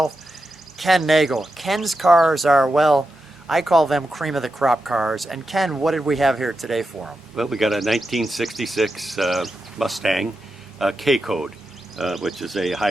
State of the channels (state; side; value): normal; both; correlation 0.89